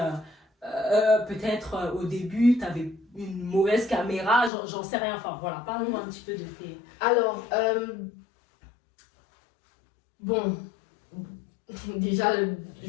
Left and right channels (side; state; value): right; drops out; at 4.5 s